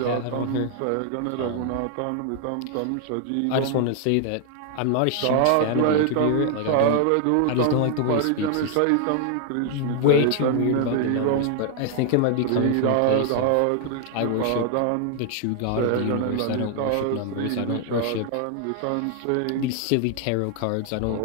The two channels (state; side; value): different; both; correlation 0.00